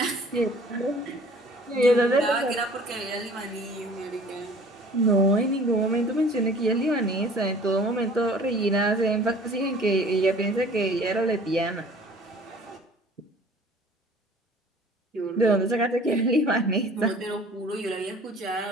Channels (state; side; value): normal; both; correlation 0.49